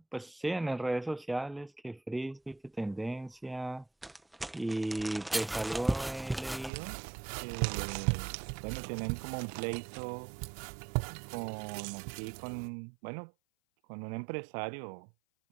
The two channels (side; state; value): left; drops out; at 6.7 s